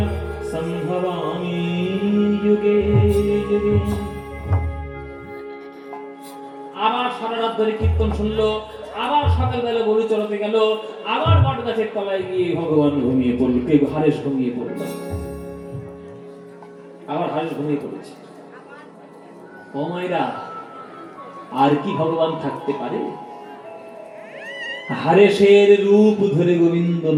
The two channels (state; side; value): identical; both; correlation 1.00